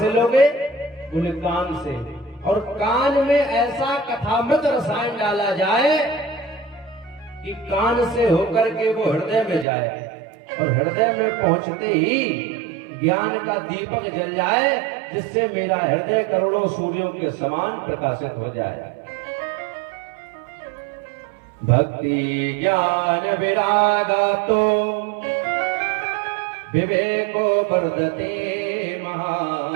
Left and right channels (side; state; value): left; drops out; at 9.7 s